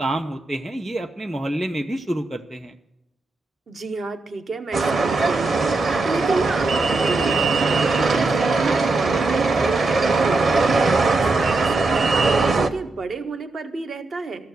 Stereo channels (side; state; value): left; quieter; 3.3 dB